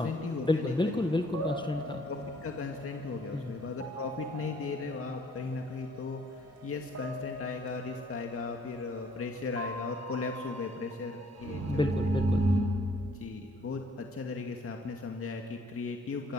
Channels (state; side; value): normal; both; correlation 0.61